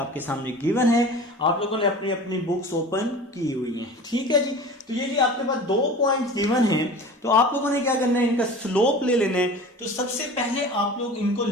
सामने गिवन है, आप लोगों ने अपनी अपनी बुक्स ओपन की हुई हैं, ठीक है जी। तो ये जी आपके पास 2 पॉइंट्स गिवन हैं, तो आप लोगों ने क्या करना है, इनका स्लोप ले लेना है। तो सबसे पहले आप लोग इनको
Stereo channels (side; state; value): both; normal; correlation 0.37